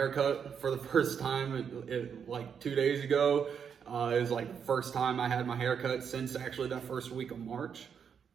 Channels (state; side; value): quieter; left; 7.2 dB